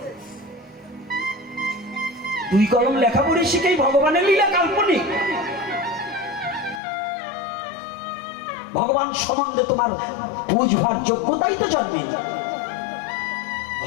2 কলম লেখা পড়ে শিখেই ভগবানের লীলা কাল্পনিক। ভগবান সম্বন্ধে তোমার বুঝবার যোগ্যতাই তো জন্মে।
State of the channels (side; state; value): right; drops out; at 6.8 s